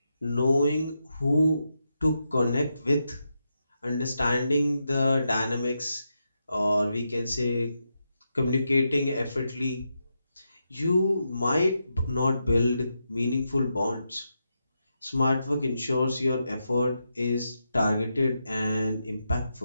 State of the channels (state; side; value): inverted; both; correlation -0.85